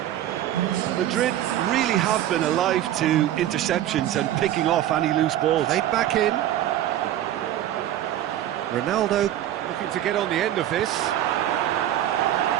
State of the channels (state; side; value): quieter; left; 12.4 dB